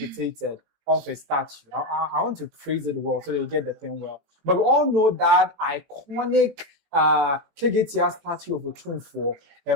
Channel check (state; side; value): late; left; 18 ms